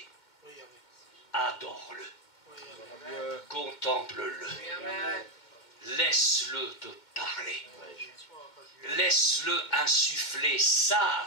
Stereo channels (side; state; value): right; late; 2.1 ms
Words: Adore-le, contemple-le, laisse-le te parler, laisse-le insuffler